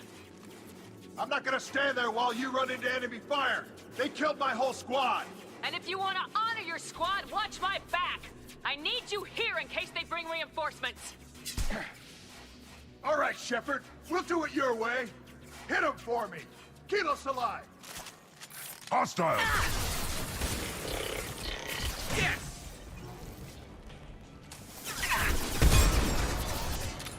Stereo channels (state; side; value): identical; both; correlation 1.00